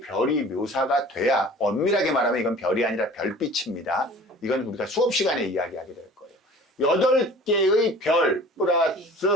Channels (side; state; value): both; normal; correlation 0.45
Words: 별이 묘사가 돼야 엄밀하게 말하면 이건 별이 아니라 별빛입니다. 이건 우리가 수업 시간에 이야기하게 될 거예요. 8개의 별 플러스